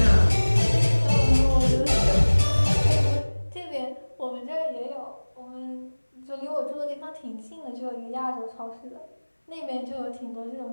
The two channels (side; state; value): both; inverted; correlation -1.00